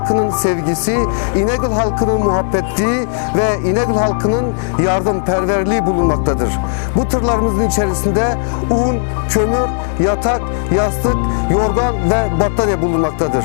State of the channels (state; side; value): silent; right; digital silence